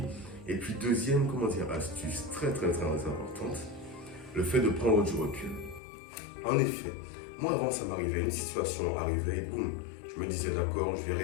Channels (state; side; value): drops out; right; at 5.8 s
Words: Et puis deuxième, astuce très importante, le fait de prendre du recul. En effet, moi avant ça m'arrivait, une situation arrivait et boum, je me disais d'accord, je vais